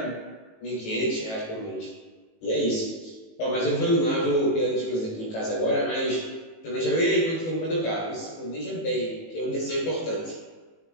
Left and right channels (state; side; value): late; right; 18 ms